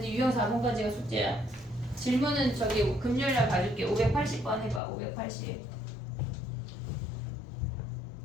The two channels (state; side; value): drops out; right; at 4.8 s